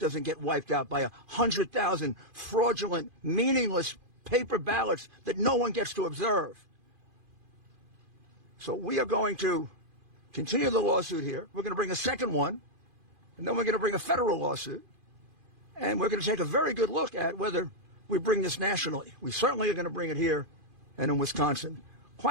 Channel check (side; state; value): left; late; 2.5 ms